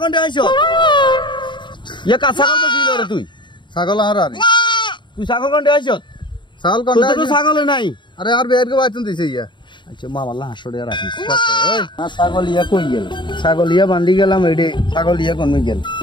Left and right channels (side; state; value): right; late; 0.23 ms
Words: কোনটা আইছো ইয়া কা ছাগল বেশি রে তুই ছাগল আর আর তুই ছাগল কোনটা আইছো ছাগল কোনটা তুই তো ছাগল নাই আরে আর বের কে বাইতুন দিছে ইয়া আচ্ছা মামাল্লাহ হাসড়ে রাখিস ওই না ছাগলিয়া কই গেল ছাগলিয়া বান্ধি গেলাম এডে ছাগলিয়া কোন গেল